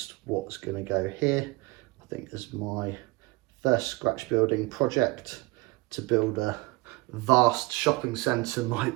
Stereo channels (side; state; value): left; quieter; 23.5 dB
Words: what's going to go here. I think as my first scratch building project to build a vast shopping centre